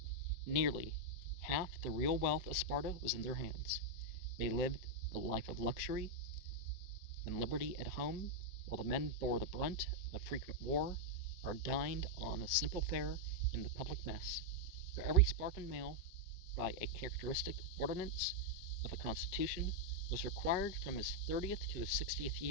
nearly half the real wealth of Sparta was in their hands. They lived a life of luxury and liberty at home, while the men bore the brunt of frequent war, or dined on a simple fare in the public mess. For every Spartan male, by a characteristic ordinance of the constitution, was required from his 30th to his 60th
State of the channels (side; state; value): right; late; 5.0 ms